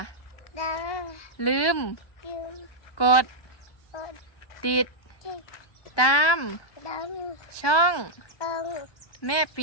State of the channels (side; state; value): right; late; 1.2 ms